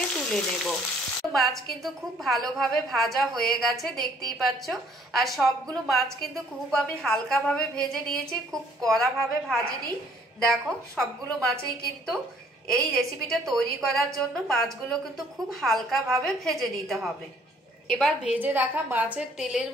তুলে নেব। মাছ কিন্তু খুব ভালোভাবে ভাজা হয়ে গেছে, দেখতেই পাচ্ছ। আর সবগুলো মাছ কিন্তু খুব আমি হালকাভাবে ভেজে নিয়েছি, খুব কড়াভাবে ভাজিনি। দেখো সবগুলো মাছেই কিন্তু এই রেসিপিটা তৈরি করার জন্য মাছগুলো কিন্তু খুব হালকাভাবে ভেজে নিতে হবে। এবার ভেজে রাখা মাছের তেলের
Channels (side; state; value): both; normal; correlation 0.61